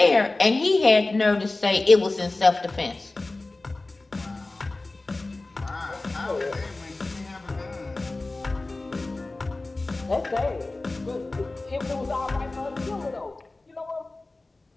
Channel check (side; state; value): right; quieter; 3.1 dB